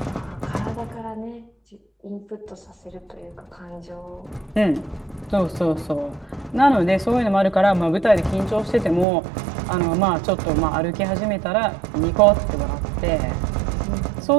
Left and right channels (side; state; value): left; drops out; at 9.1 s